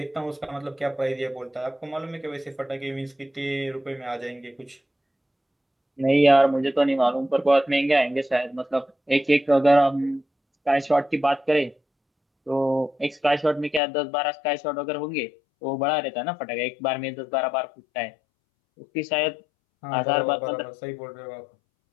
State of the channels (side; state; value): right; drops out; at 13.8 s